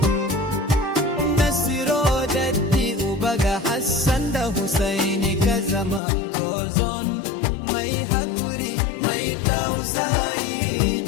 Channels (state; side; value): drops out; right; at 6.0 s